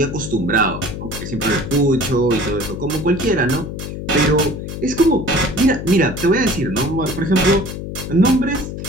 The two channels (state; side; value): noise; left; hum, 7 dB below the sound